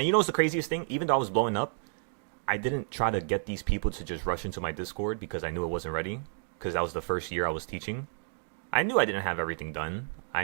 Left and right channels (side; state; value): left; silent; 57 dB below the other